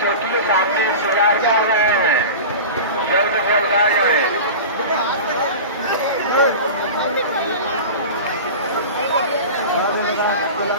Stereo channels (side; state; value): both; inverted; correlation -0.31